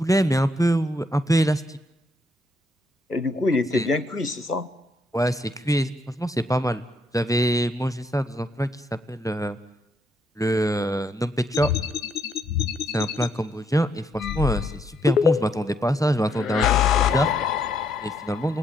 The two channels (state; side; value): normal; both; correlation 0.73